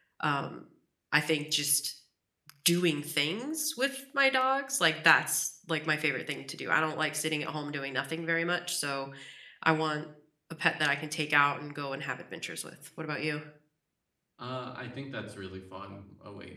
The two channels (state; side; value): identical; both; correlation 1.00